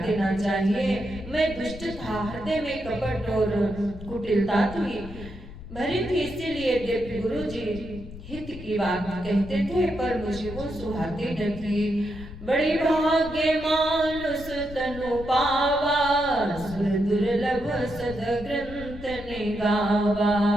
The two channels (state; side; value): noise; left; rumble, 14 dB below the sound